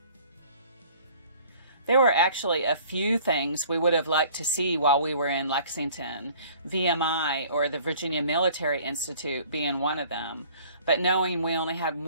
There were actually a few things we would have liked to see while we were in Lexington, VMI or the Virginia Military Institute being one of them, but knowing we only had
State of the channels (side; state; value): both; inverted; correlation -0.52